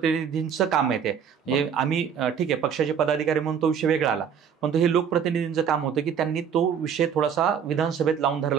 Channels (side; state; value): left; quieter; 7.6 dB